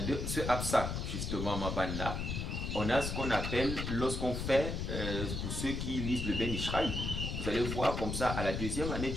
ce Absak, justement, Maban là, on a ce qu'on appelle, lorsqu'on fait, pour ceux qui lisent le Ben Ishraï, vous allez voir comme ça, à la deuxième année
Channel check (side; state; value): left; noise; rumble, 3 dB below the sound